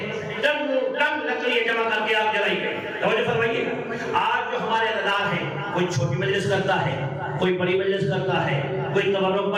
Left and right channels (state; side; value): identical; both; correlation 1.00